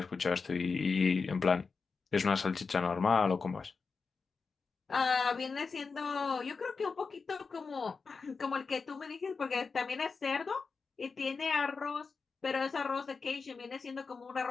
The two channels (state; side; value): quieter; right; 4.8 dB